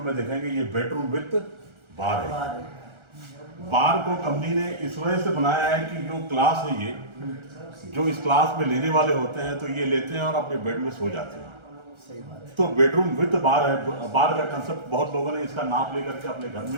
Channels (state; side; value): late; left; 1.4 ms